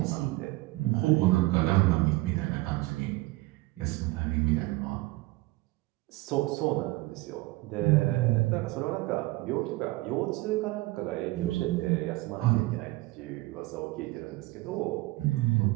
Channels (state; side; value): quieter; left; 20.8 dB